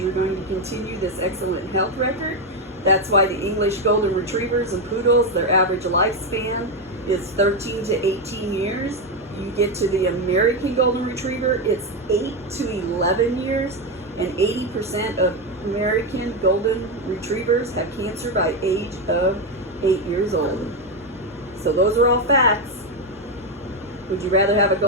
going to continue this excellent health record. That's why the English Golden Retrievers and Poodles, their average lifespan is 13 to 18 years. You get to the American Golden Retriever, it's 8 to 11 years, and 80% of American Golden Retrievers have cancer by age of 8 years old. So those are all facts. Would you rather have a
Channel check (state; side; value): normal; both; correlation 0.09